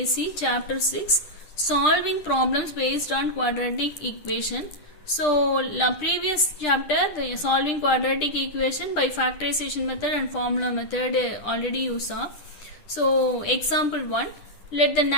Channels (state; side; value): late; right; 10 ms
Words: Chapter 6 Solving Problems Based on Quadratic Equation. So, previous chapter, the solving quadratic equation by factorization method and formula method already you saw. So, example 1, let the